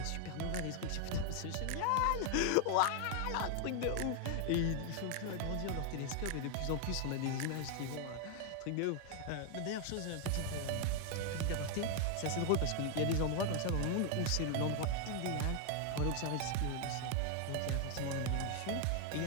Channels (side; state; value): both; different; correlation 0.00